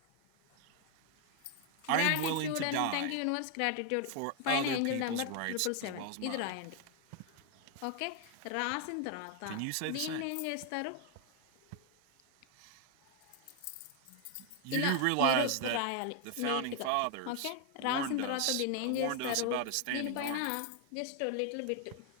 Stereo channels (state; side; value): different; both; correlation 0.01